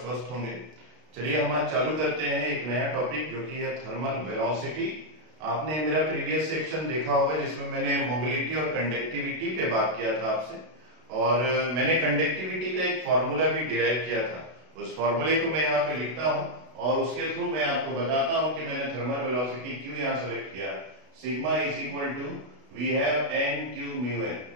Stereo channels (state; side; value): late; left; 32 ms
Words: होंगे। चलिए हम आज चालू करते हैं एक नया टॉपिक जो कि है थर्मल वेलोसिटी। आपने मेरा प्रीवियस सेक्शन देखा होगा जिसमें मैंने मोबिलिटी और कंडक्टिविटी पे बात किया था आपसे, और मैंने कंडक्टिविटी का एक फॉर्मूला भी डिराइव किया था। उस फॉर्मूले को मैं यहाँ पे लिखता हूँ और उसके थ्रू मैं आपको बताता हूँ कि मैंने थर्मल वेलोसिटी क्यों यहाँ सेलेक्ट किया। Sigma is equal to we have n q mu n.